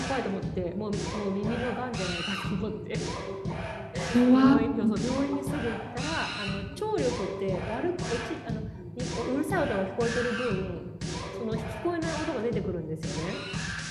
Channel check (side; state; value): both; identical; correlation 1.00